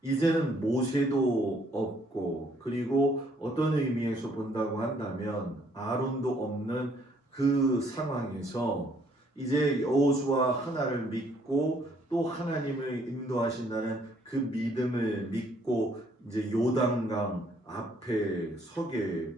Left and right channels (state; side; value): normal; both; correlation 0.66